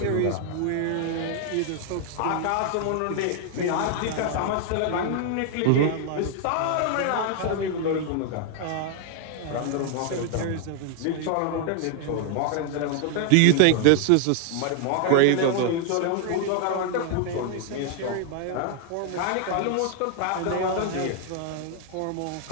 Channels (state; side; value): different; both; correlation 0.00